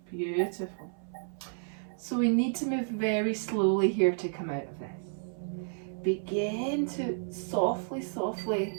Beautiful. So we need to move very slowly here to come out of this. Begin to softly, softly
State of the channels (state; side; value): silent; left; 57 dB below the other